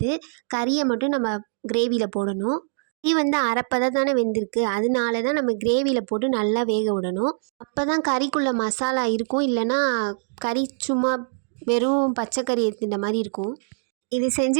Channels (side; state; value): left; silent; 62 dB below the other